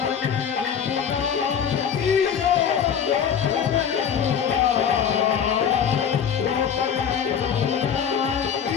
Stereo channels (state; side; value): quieter; right; 7.8 dB